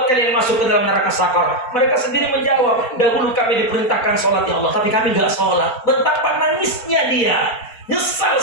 kalian masuk ke dalam neraka sakar? Mereka sendiri menjawab, dahulu kami diperintahkan sholat ya Allah, tapi kami gak sholat. Betapa nangisnya dia. Nyesal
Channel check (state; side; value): late; right; 4.4 ms